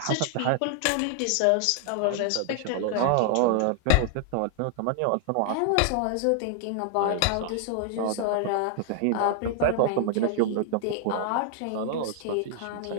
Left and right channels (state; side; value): different; both; correlation 0.00